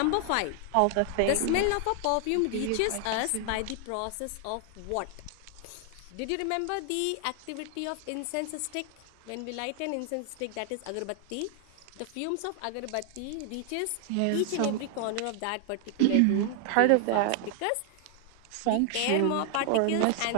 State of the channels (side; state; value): both; different; correlation 0.00